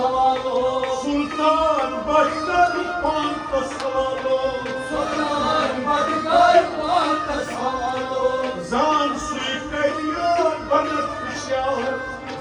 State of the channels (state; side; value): identical; both; correlation 1.00